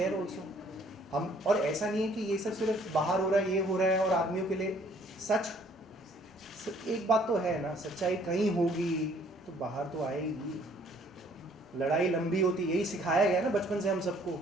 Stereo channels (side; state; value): both; normal; correlation 0.60